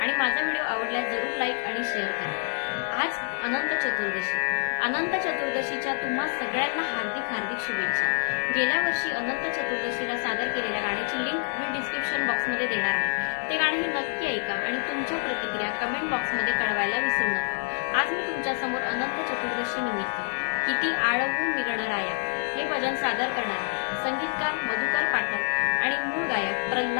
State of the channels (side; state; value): right; silent; digital silence